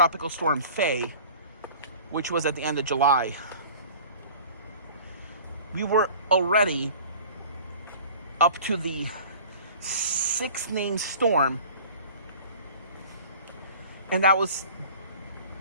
Storm Faye, which was at the end of July. We were already up to the 6th named storm, and that was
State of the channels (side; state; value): both; inverted; correlation -0.44